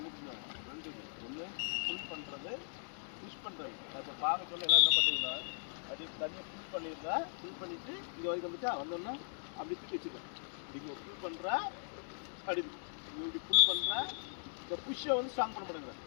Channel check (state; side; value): silent; right; digital silence